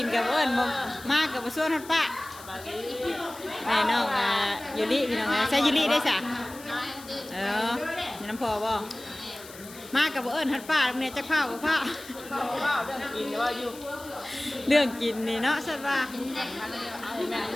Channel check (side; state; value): left; noise; hiss, 17 dB below the sound